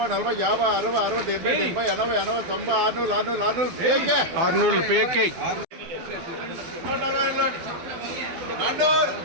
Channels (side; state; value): left; late; 12 ms